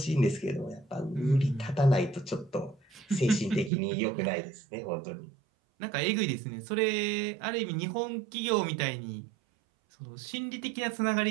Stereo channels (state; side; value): drops out; left; at 3.7 s